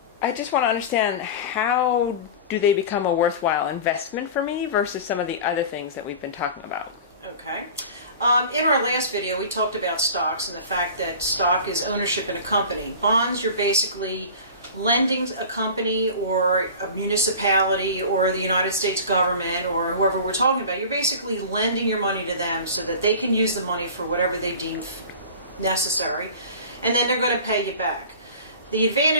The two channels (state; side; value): inverted; both; correlation -0.37